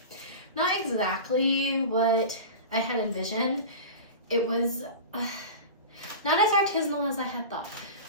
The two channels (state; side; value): inverted; both; correlation -0.31